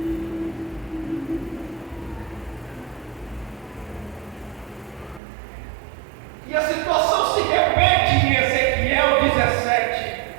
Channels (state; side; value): drops out; left; at 5.2 s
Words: E a situação se repete em Ezequiel 17,